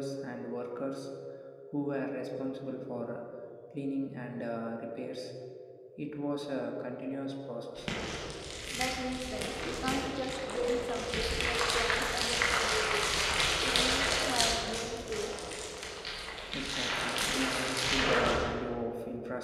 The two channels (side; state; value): both; identical; correlation 1.00